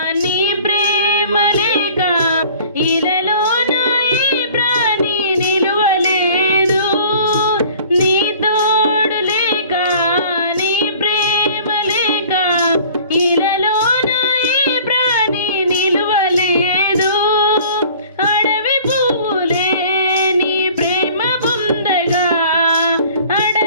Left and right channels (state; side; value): inverted; both; correlation -0.49